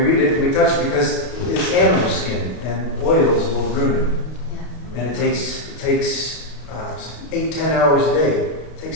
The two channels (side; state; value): right; late; 32 ms